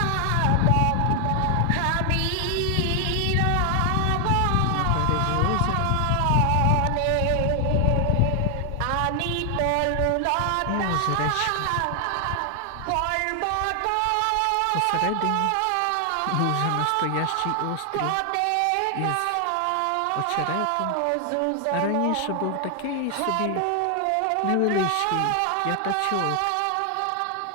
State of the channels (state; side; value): different; both; correlation 0.00